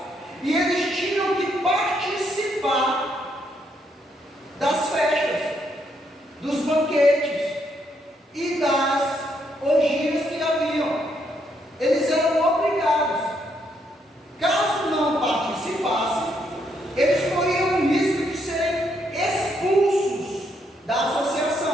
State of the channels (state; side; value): normal; both; correlation 0.75